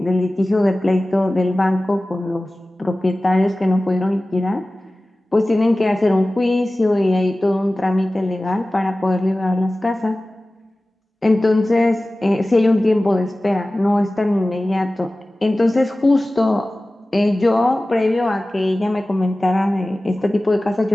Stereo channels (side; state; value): both; normal; correlation 0.97